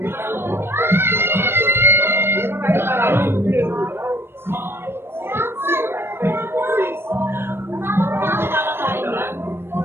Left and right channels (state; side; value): late; left; 0.11 ms